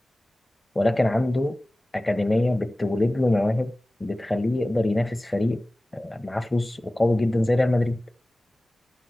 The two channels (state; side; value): normal; both; correlation 0.98